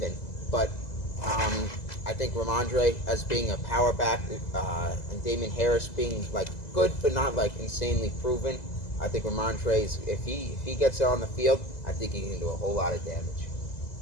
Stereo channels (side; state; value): right; late; 2.0 ms